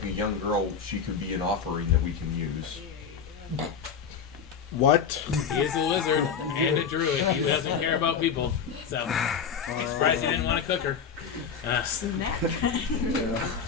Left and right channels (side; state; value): right; quieter; 6.7 dB